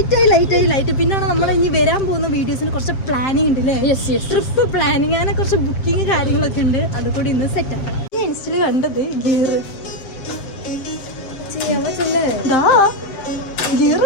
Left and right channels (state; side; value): late; right; 7.6 ms